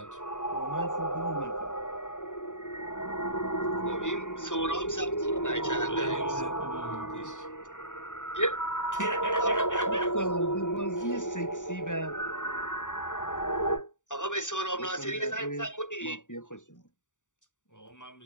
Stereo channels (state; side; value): late; right; 0.86 ms